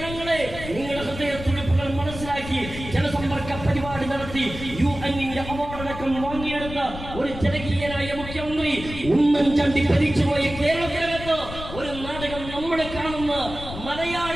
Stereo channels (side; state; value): left; noise; rumble, 10 dB below the sound